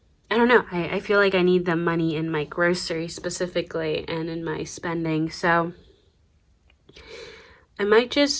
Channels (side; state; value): both; identical; correlation 1.00